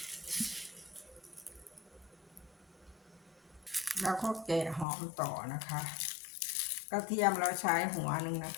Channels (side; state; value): right; drops out; at 4.9 s